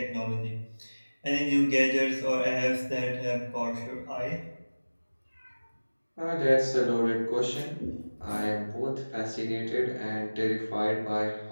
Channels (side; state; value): both; inverted; correlation -1.00